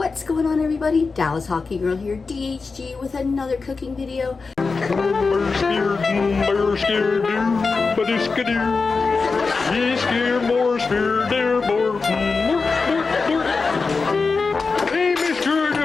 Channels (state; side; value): quieter; right; 4.4 dB